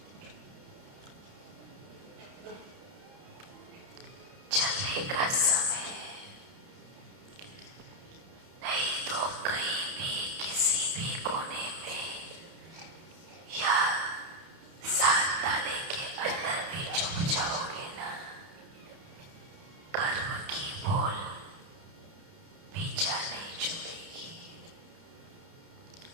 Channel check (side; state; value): left; late; 30 ms